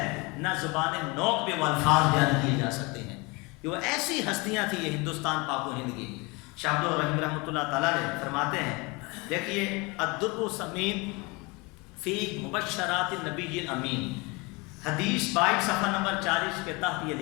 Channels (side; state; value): right; quieter; 26.7 dB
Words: نہ زبان نوک پہ وہ الفاظ بیان کیے جا سکتے ہیں۔ کہ وہ ایسی ہستیاں تھیں یہ ہندوستان پاک و ہند کی، شاہ عبد الرحیم رحمۃ اللہ تعالیٰ علیہ فرماتے ہیں، دیکھیے الدر السمین فی مبشرات النبی الامین، حدیث 22 صفحہ نمبر 40 کے تحت یہ